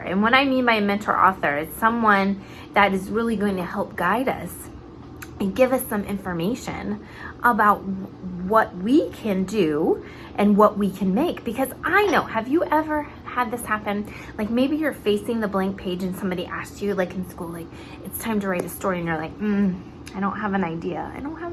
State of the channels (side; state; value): both; identical; correlation 1.00